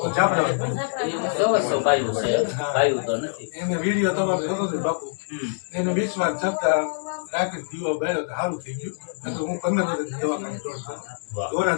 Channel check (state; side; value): silent; right; digital silence